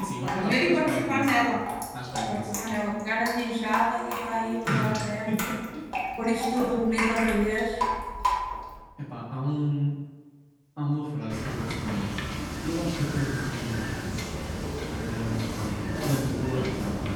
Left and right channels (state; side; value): identical; both; correlation 1.00